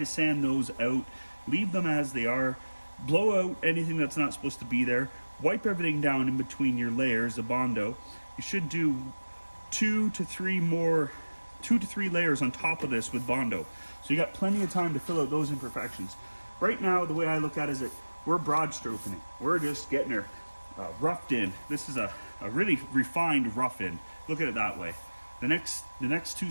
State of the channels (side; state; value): both; inverted; correlation -1.00